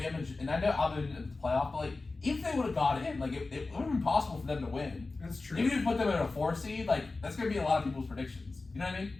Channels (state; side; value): quieter; right; 3.6 dB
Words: and I know Alabama in the playoff, but like even if they would have got in, like it would have been possible for them to win. That's true. Even if you put them in a 4 seed, like that's gonna be a lot of people's predictions. You know what I mean?